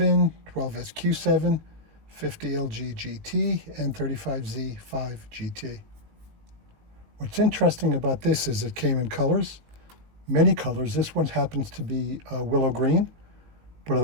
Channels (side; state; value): left; late; 19 ms